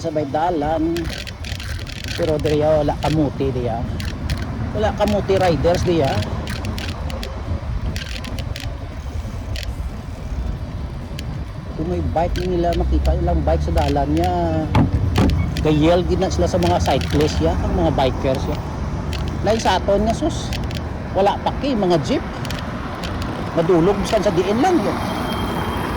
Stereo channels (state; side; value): identical; both; correlation 1.00